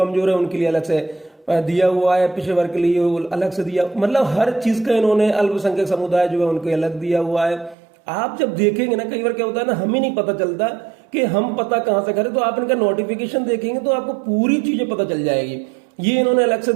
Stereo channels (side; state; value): left; drops out; at 7.8 s